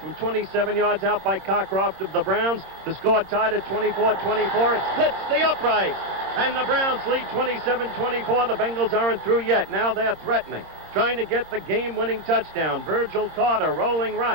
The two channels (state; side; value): late; left; 26 ms